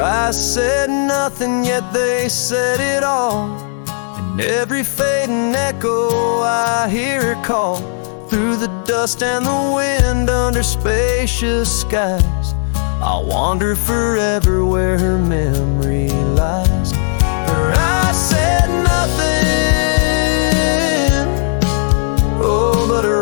eyes said nothing, yet they said it all. In every fading echo I hear her call, through the dust and the wind, under spacious skies. I'll wander forever where her memory lies. Her eyes said nothing, oh, but her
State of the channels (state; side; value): silent; right; digital silence